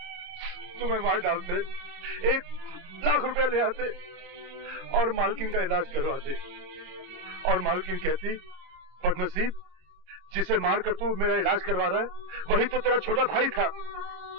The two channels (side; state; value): left; late; 27 ms